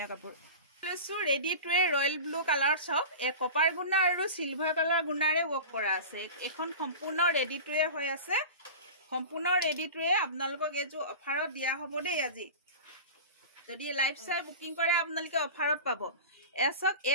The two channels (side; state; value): both; inverted; correlation -0.32